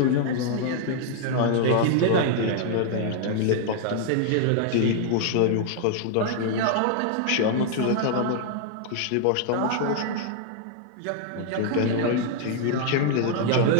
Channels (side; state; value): both; different; correlation 0.00